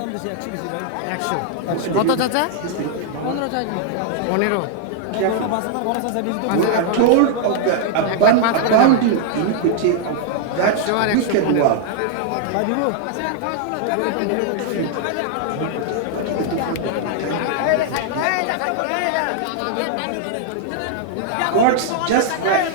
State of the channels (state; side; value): different; both; correlation -0.01